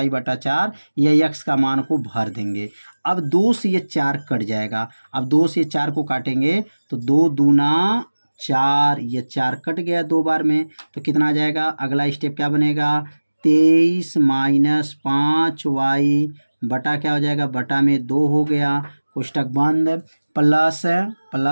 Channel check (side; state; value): both; inverted; correlation -1.00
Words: बटा 4, यह x का मान को भर देंगे। अब 2 से ये 4 कट जाएगा, अब 2 से 4 को काटेंगे तो 2 दूना 4, ये 4 कट गया 2 बार में, तो कितना आ जाएगा, अगला स्टेप क्या बनेगा, 23 माइनस 5y बटा क्या हो जाएगा, बटा में 2 हो गया, कोष्टक बंद,